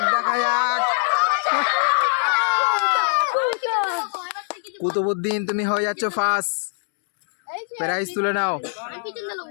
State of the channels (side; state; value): right; silent; digital silence